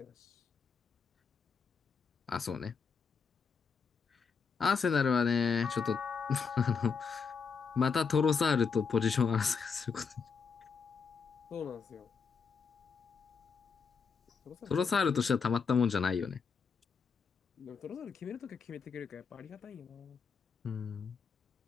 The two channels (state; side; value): quieter; right; 5.6 dB